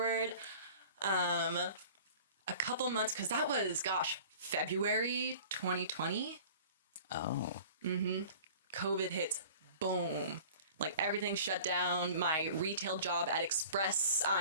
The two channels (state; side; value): inverted; both; correlation -0.44